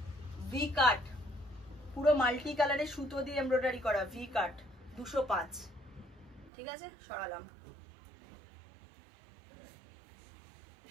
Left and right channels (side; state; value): left; drops out; at 6.5 s